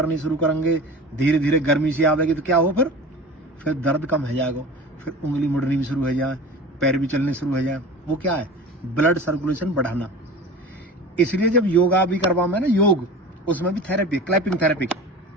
धीरे धीरे गर्मी सी आवेगी, तो क्या हो, फिर दर्द कम हो जाएगा, फिर उंगली मुड़नी भी शुरू हो जाए, पैर भी चलने शुरू हो जाए। वो क्या है, ब्लड सर्कुलेशन बढ़ाना। इसलिए जब योगा भी करवा में ना, योग, उसमें भी थेरेपी, क्लैपिंग थेरेपी।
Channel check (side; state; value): both; normal; correlation 0.36